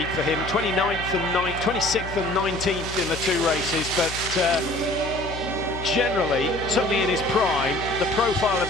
for him, 26th and 19th in the 2 races, but generally, certainly in his prime, the profile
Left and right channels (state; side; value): noise; left; hum, 11 dB below the sound